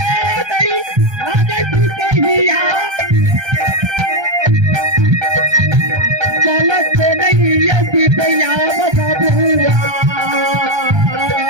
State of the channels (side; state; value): left; late; 1.3 ms